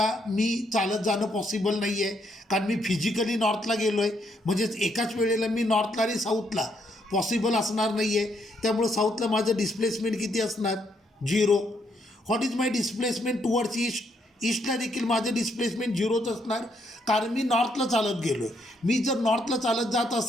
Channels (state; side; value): normal; both; correlation 0.74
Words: मी चालत जाणं पॉसिबल नाही आहे, कारण मी फिजिकली नॉर्थला गेलो आहे. म्हणजेच एकाच वेळेला मी नॉर्थला आणि साऊथला पॉसिबल असणार नाही आहे. त्यामुळं साऊथला माझं डिस्प्लेसमेंट किती असणार? 0. What is my displacement towards east. ईस्टला देखील माझं डिस्प्लेसमेंट 0च असणार, कारण मी नॉर्थला चालत गेलो आहे. मी जर नॉर्थला चालत जात